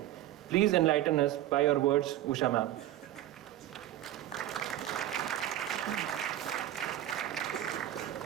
Please enlighten us by your words, Usha ma'am.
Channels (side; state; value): left; quieter; 13.3 dB